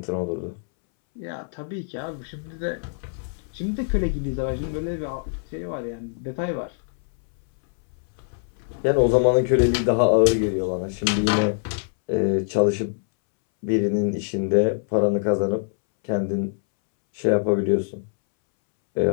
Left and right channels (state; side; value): silent; right; 63 dB below the other